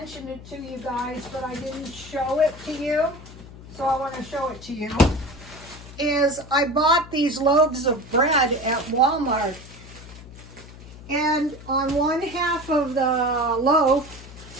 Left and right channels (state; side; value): noise; left; hum, 17 dB below the sound